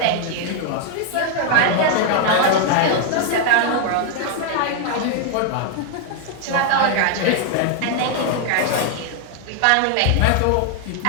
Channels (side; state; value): both; different; correlation 0.00